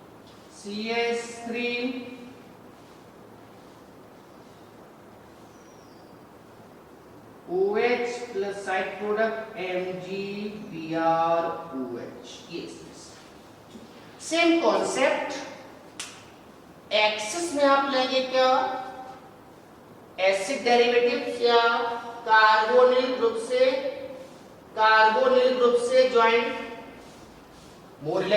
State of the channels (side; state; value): both; identical; correlation 1.00